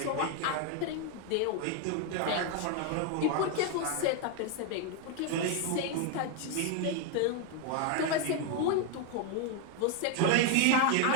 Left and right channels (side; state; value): both; different; correlation 0.01